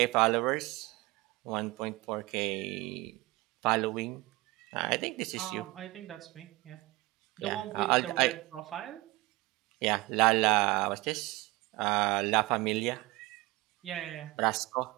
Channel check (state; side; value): quieter; left; 21.2 dB